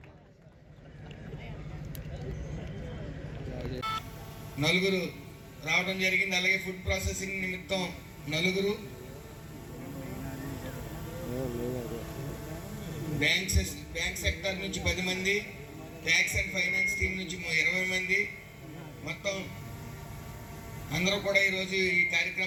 నలుగురు రావడం జరిగింది. అలాగే ఫుడ్ ప్రాసెసింగ్ నిమిత్తం 4, బ్యాంక్ సెక్టర్ నుంచి 10 మంది, ట్యాక్స్ అండ్ ఫైనాన్స్ టీం నుంచి 20 మంది, మొత్తం అందరూ కూడా ఈరోజు ఈ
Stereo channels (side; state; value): both; identical; correlation 1.00